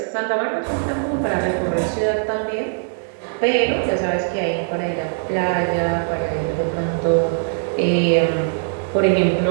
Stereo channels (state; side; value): silent; left; 65 dB below the other